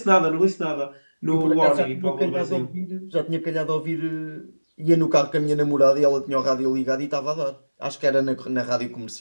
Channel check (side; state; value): both; inverted; correlation -1.00